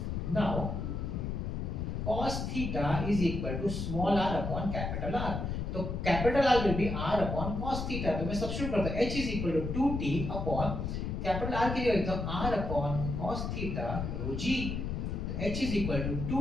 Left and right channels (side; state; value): left; noise; rumble, 3 dB below the sound